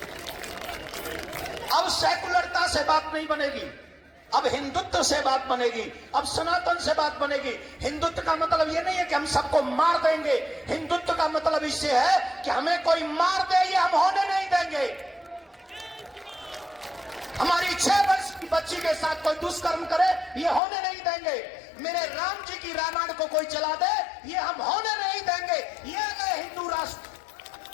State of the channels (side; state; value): right; drops out; at 20.6 s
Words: अब सेकुलरता से बात नहीं बनेगी, अब हिंदुत्व से बात बनेगी, अब सनातन से बात बनेगी। हिंदुत्व का मतलब ये नहीं है कि हम सबको मार देंगे। हिंदुत्व का मतलब इससे है कि हमें कोई मार दे, ये हम होने नहीं देंगे। हमारी 6 वर्ष की बच्ची के साथ कोई दुष्कर्म करे, ये होने नहीं देंगे। मेरे राम जी की रामायण को कोई जला दे, ये हम होने नहीं देंगे। ये है हिंदू राष्ट्र,